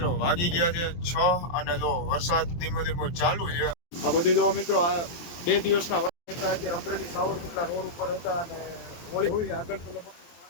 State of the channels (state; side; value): late; right; 23 ms